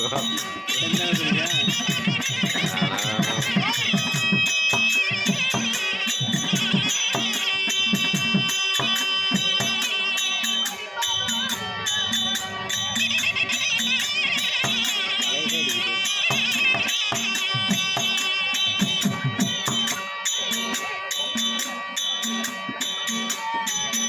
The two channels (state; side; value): identical; both; correlation 1.00